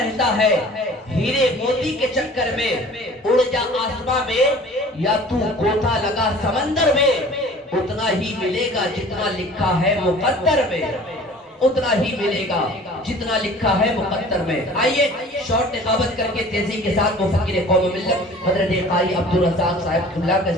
ہے ہیرے موتی کے چکر میں. اڑ جا آسمان میں یا تو گوتا لگا سمندر میں، اتنا ہی ملے گا جتنا لکھا ہے مقدر میں. اتنا ہی ملے گا جتنا لکھا ہے مقدر میں. آئیے شارٹ نقابت کر کے تیزی کے ساتھ مفکر قوم و ملت حضرت قاری عبدالرزاق صاحب اللہ کا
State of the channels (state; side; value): normal; both; correlation 0.46